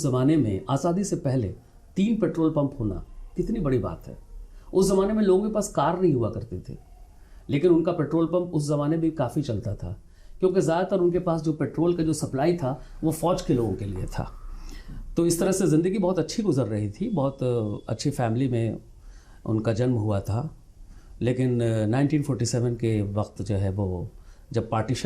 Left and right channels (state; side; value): identical; both; correlation 1.00